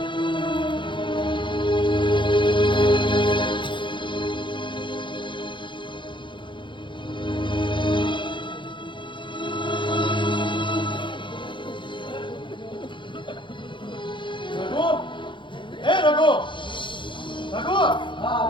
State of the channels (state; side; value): late; right; 0.23 ms